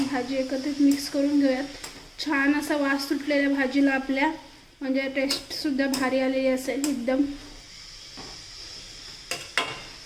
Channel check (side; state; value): both; identical; correlation 1.00